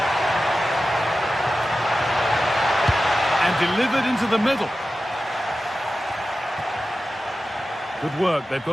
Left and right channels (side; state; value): both; normal; correlation 0.93